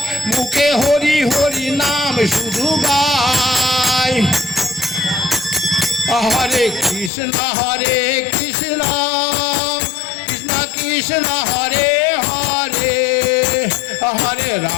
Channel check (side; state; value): right; drops out; at 7.1 s